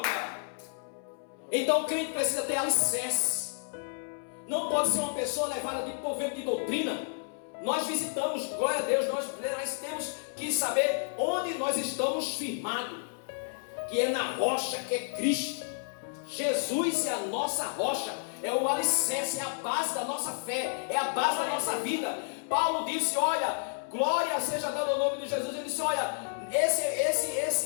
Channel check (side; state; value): right; silent; 57 dB below the other